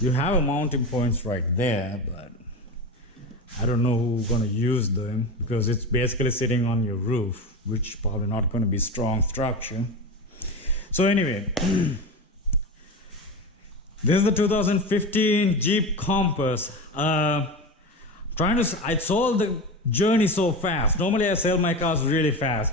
have a mounting points right there, but I don't know who's gonna use them, because it's basically sitting on your roof, which probably not gonna be strong structure. So anyway, this is the 2015 Jeep Compass. I sold the journey so fast. Normally I sell my cars really fast.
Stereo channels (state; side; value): normal; both; correlation 0.24